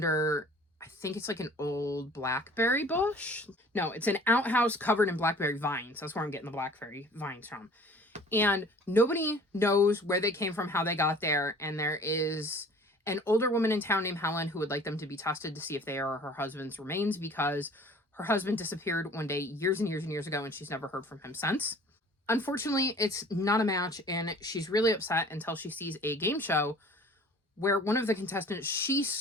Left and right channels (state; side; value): normal; both; correlation 0.49